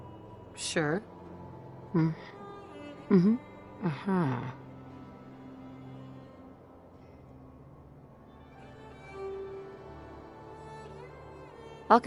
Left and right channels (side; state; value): both; identical; correlation 1.00